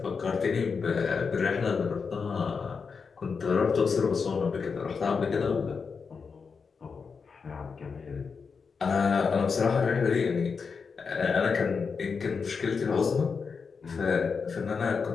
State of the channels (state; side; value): quieter; right; 5.4 dB